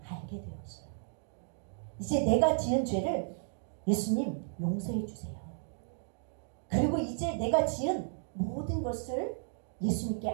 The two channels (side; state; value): left; silent; digital silence